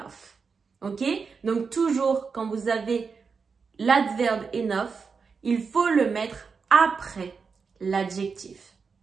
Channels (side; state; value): left; quieter; 5.3 dB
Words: Ok? Donc, toujours, quand vous avez l'adverbe enough, il faut le mettre après l'adjectif.